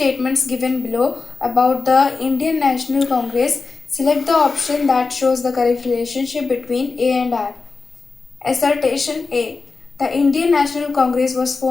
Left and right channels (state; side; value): quieter; right; 4.2 dB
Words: given below about the Indian National Congress. Select the option that shows the correct relationship between A and R. Assertion A. The Indian National Congress was